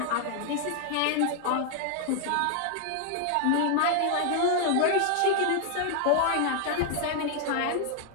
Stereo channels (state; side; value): different; both; correlation 0.00